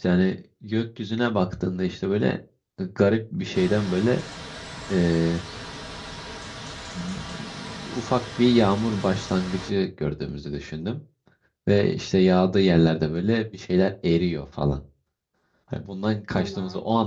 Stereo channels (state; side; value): identical; both; correlation 1.00